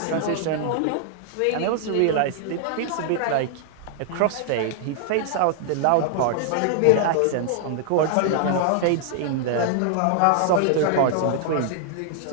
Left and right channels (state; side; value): different; both; correlation 0.00